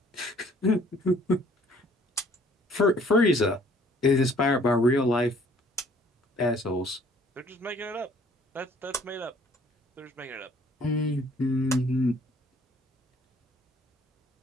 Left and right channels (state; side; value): normal; both; correlation 0.58